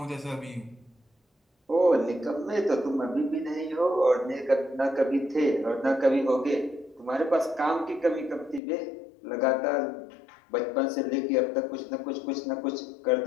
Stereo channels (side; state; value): right; drops out; at 8.6 s